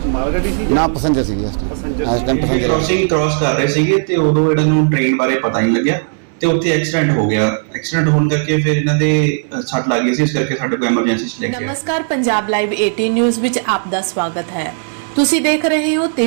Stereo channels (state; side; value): silent; left; digital silence